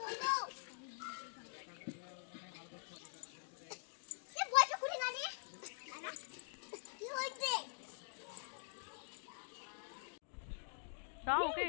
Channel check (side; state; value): right; silent; digital silence